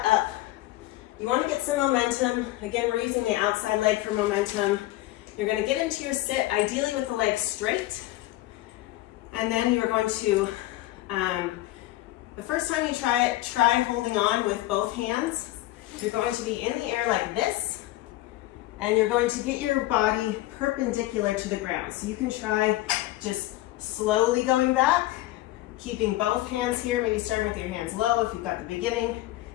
up. You want to get some momentum. Again, we're using the outside leg for momentum. You're going to get into your sit, ideally with the legs straight. And then you are going to, the first time you try it, try holding on with both hands. You're going to be in the air like this, and you're going to get your body perpendicular to the ground. So you can try just slowly going back, keeping both hands here, maybe starting with your hands low if you've got the beginning,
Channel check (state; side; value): quieter; right; 16.7 dB